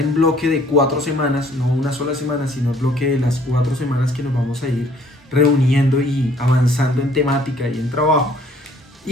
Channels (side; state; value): both; normal; correlation 0.60